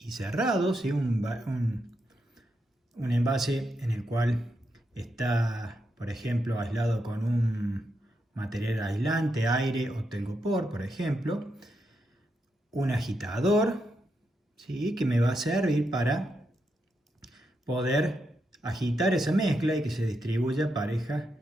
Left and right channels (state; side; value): normal; both; correlation 0.83